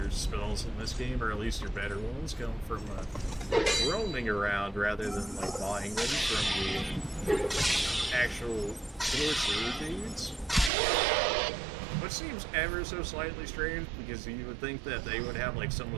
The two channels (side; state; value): left; drops out; at 10.7 s